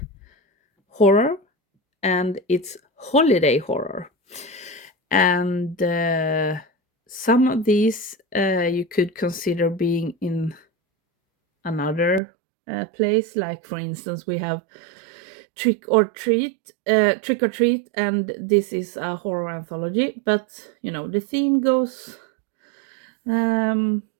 horror and it's holiday horror. And some of these you could consider being in another place. Like, for instance, we have Trick or Treat, and this is a horror anthology. But the theme goes um,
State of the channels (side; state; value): left; drops out; at 12.2 s